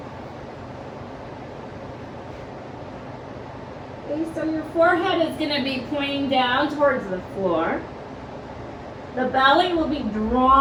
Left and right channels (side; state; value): both; identical; correlation 1.00